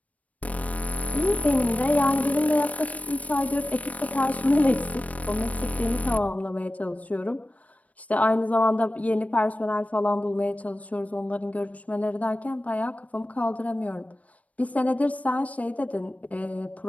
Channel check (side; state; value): right; late; 0.067 ms